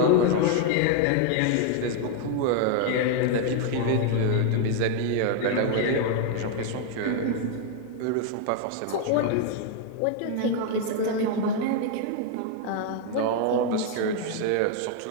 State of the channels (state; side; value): different; both; correlation 0.00